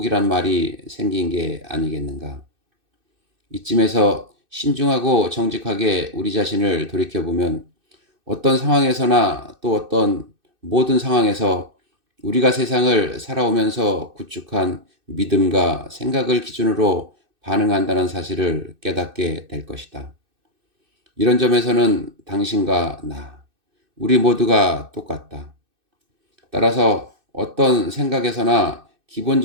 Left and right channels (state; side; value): late; left; 2.6 ms